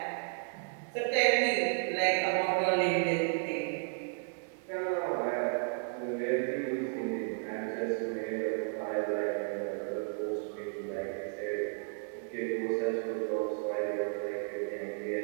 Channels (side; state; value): left; silent; 56 dB below the other